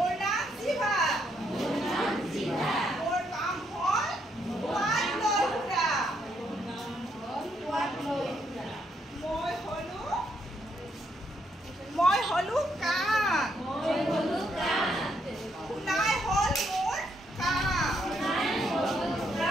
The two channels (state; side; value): normal; both; correlation 0.75